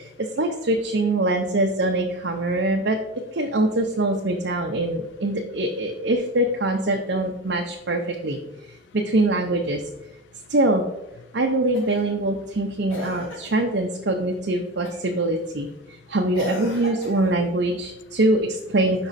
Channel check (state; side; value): normal; both; correlation 0.26